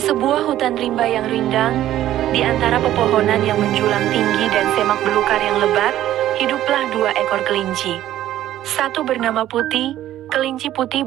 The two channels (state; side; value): quieter; left; 13.0 dB